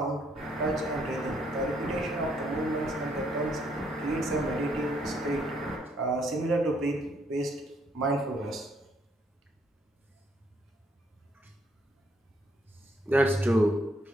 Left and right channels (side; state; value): both; normal; correlation 0.70